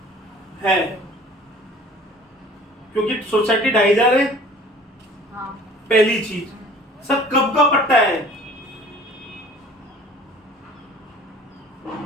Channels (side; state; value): both; normal; correlation 0.48